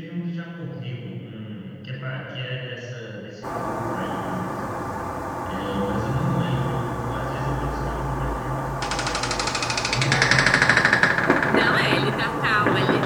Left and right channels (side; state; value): both; identical; correlation 1.00